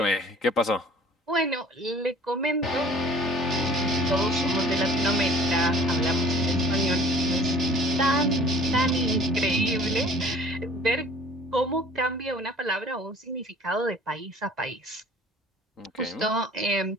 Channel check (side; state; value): both; normal; correlation 0.49